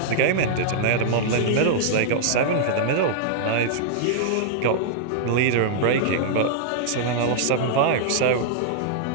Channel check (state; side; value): different; both; correlation -0.01